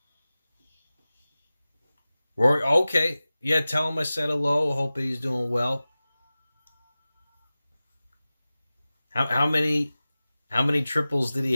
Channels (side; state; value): both; inverted; correlation -0.97